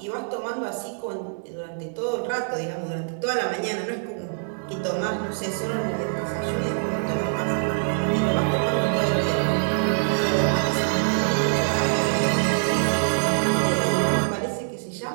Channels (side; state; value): left; silent; digital silence